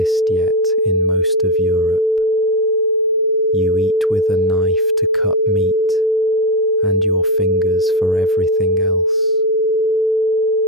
yet in most of Europe. You eat with a knife to cut meat and your fingers for everything else.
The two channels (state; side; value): normal; both; correlation 0.09